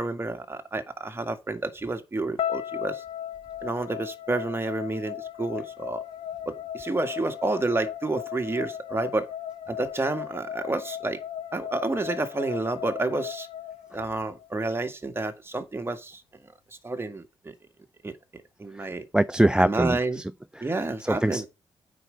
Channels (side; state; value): both; normal; correlation 0.77